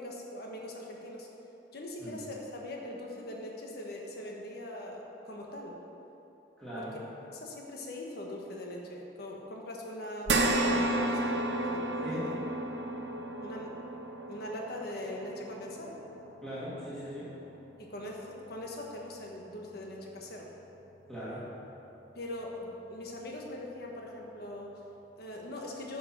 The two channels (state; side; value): normal; both; correlation 0.27